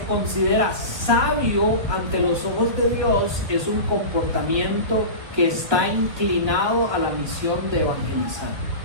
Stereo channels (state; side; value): late; left; 1.7 ms